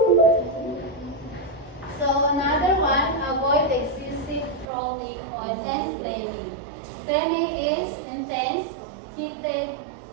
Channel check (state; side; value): drops out; left; at 4.7 s